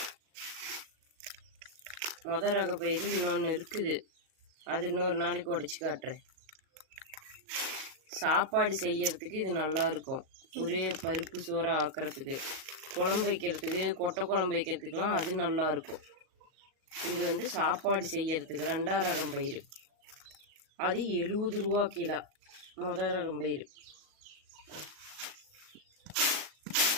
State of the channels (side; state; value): left; late; 37 ms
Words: முதல் ரக பயிர் இன்னொன்று இருக்குது. அது இன்னொரு நாளைக்கு உடச்சி காட்டுறேன். சாப்பாடு செய்யறதுக்கு இது நல்லா இருக்கும். ஒரே பருப்பு சோறை ஆக்கிறதுக்கு, குழம்பு வைக்கிறதுக்கு, கொட்டை குழம்பு வைக்கிறதுக்கெலாம் அது நல்லா இருக்கும். இது சாப்பாடு செய்யறதுக்கு ரெண்டாவது ரகம் பயிர். அது 70 ரூபா கிலோ முதல் ரகம் பயிர்.